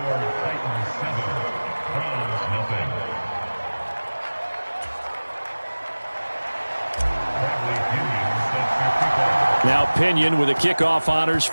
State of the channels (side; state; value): both; inverted; correlation -1.00